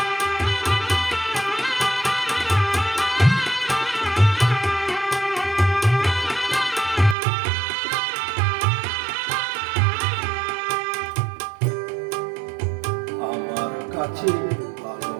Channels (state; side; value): drops out; left; at 7.2 s